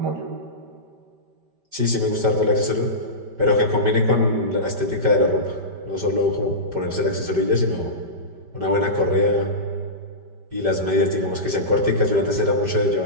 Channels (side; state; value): left; late; 5.1 ms